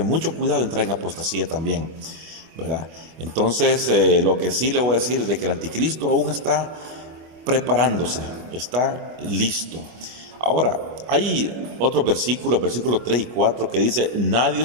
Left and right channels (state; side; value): late; left; 25 ms